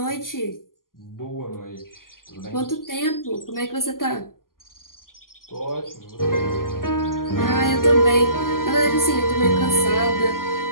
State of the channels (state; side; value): late; right; 0.91 ms